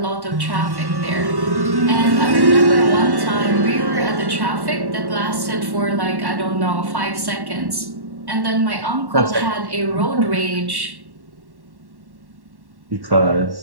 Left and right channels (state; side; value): late; left; 1.1 ms